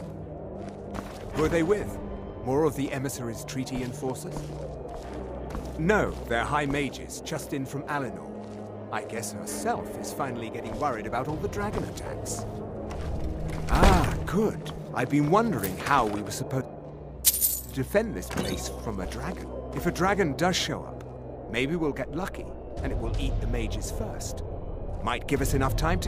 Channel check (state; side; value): identical; both; correlation 1.00